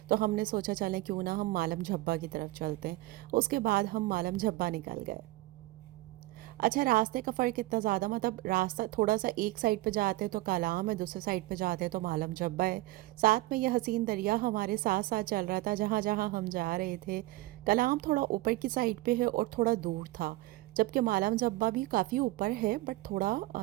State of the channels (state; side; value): quieter; left; 18.9 dB